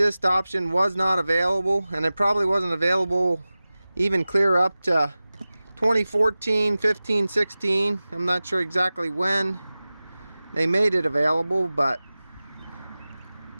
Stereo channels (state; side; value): inverted; both; correlation -0.97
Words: option was not available, and it probably wasn't available even clear up to 2014, 15, 16. I'm not sure exactly when they made it available, but